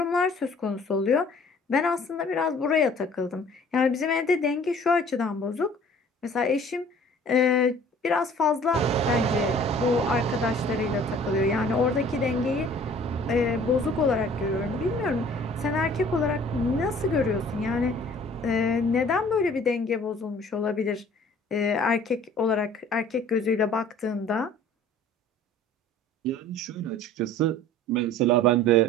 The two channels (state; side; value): normal; both; correlation 0.51